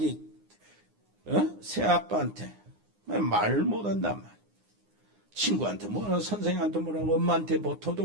새아빠한테 말 못한단 말이야. 친구한테 뭐라 선생님한테 뭐라고 엄마한테 뭐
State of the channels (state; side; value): late; left; 9.7 ms